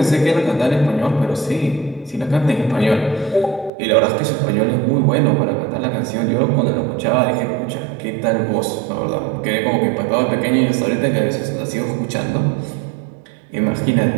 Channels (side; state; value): left; drops out; at 3.7 s